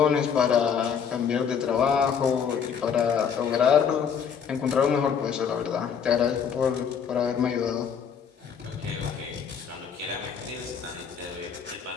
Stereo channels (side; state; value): right; quieter; 7.1 dB